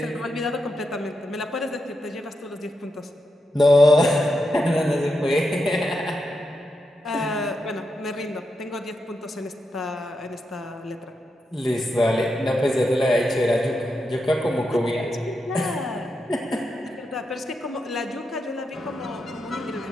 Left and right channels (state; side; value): normal; both; correlation 0.86